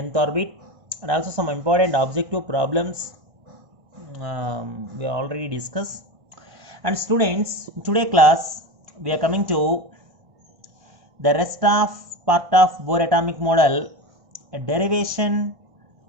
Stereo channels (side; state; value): left; late; 1.6 ms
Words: nth orbit and also some important objective problems we already discussed. And students, in today class, we are coming to the rest of part of Bohr atomic model, a derivation